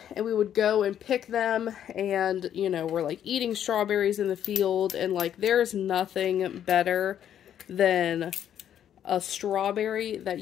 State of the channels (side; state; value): right; quieter; 10.0 dB